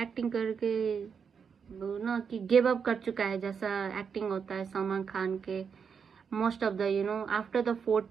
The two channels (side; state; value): left; quieter; 6.4 dB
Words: करके वो ना कि गिव अप कर चुका है, जैसा एक्टिंग होता है सलमान खान के। Most of the after the